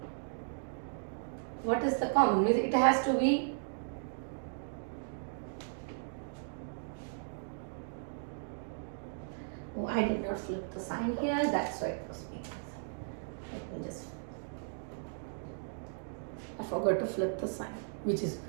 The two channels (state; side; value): silent; left; digital silence